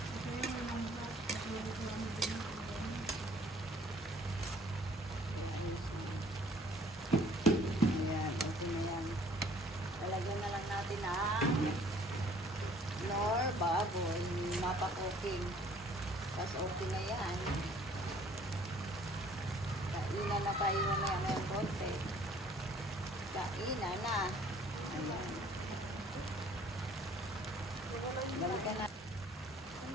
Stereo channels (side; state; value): both; normal; correlation 0.57